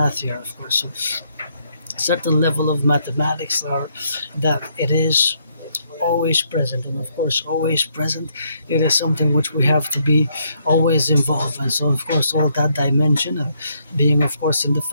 here, of course. So certain level of mathematics are that it is always present, and of course always present, it is something which we have to be always involved in. So of course all that dimension of being, of course, in the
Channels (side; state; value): both; inverted; correlation -0.72